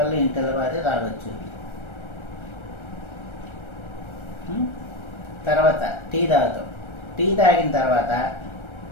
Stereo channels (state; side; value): late; right; 1.3 ms